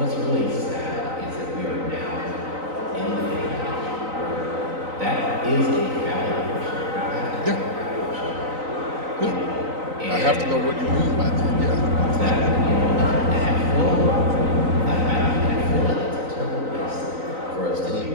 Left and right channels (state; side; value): late; left; 3.9 ms